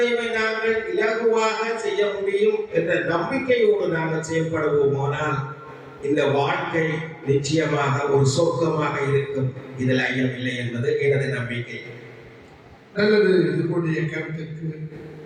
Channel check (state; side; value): identical; both; correlation 1.00